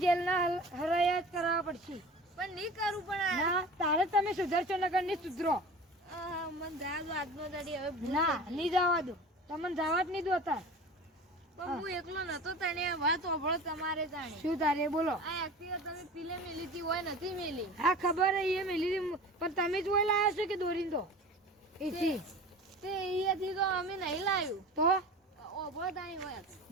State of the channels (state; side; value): normal; both; correlation 0.37